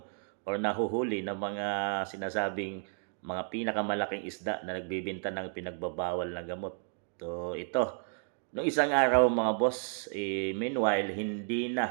or nahuhuli na mga sinasabing mga pinakamalaking isda na nagbibinta ng pinagbabawal na gamot. So, ito, nung isang araw mga boss, meanwhile, hindi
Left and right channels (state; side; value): silent; left; 56 dB below the other